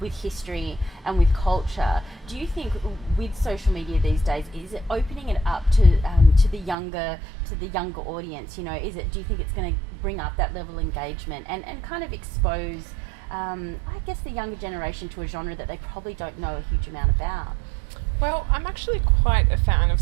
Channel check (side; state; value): left; drops out; at 6.8 s